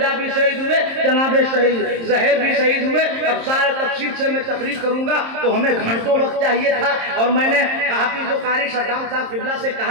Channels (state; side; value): late; left; 26 ms